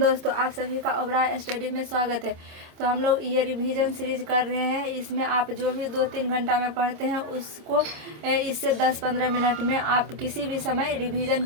दोस्तों, आप सभी का ओबराय स्टडी में स्वागत है। तो हम लोग ये रिवीजन सीरीज कर रहे हैं। इसमें आप जो भी 2-3 घंटा में पढ़ते हैं उसको इससे 10-15 मिनट में आप किसी भी समय रिवीजन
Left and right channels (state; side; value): late; left; 26 ms